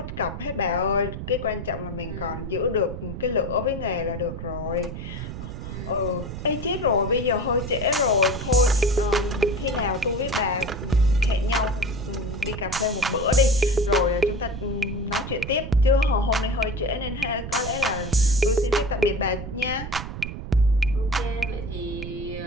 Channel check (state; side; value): noise; right; rumble, 8 dB below the sound